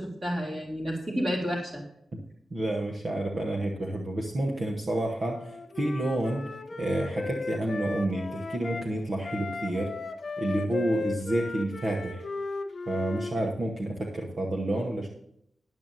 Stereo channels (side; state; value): both; normal; correlation 0.91